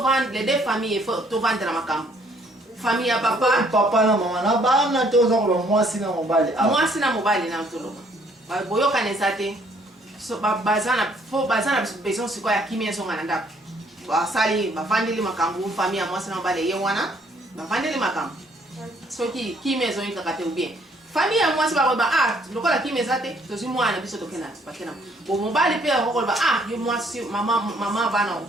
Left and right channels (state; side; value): normal; both; correlation 0.64